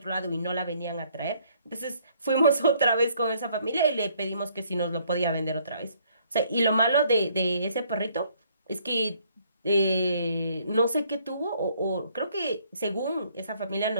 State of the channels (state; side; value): inverted; both; correlation -0.65